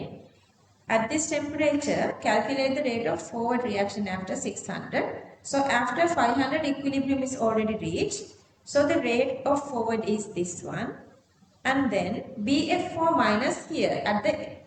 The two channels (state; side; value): identical; both; correlation 1.00